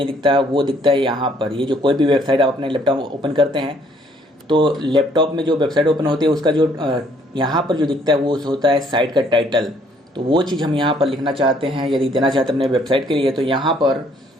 दिखता है, वो दिखता है यहाँ पर। ये जो कोई भी वेबसाइट आप अपने लैपटॉप ओपन करते हैं तो लैपटॉप में जो वेबसाइट ओपन होती है उसका जो यहाँ पर जो दिखता है वो होता है साइट का टाइटल। तो वो चीज़ हम यहाँ पर लिखना चाहते हैं, यदि देना चाहते हैं अपने वेबसाइट के लिए, तो यहाँ पर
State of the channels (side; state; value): both; normal; correlation 0.64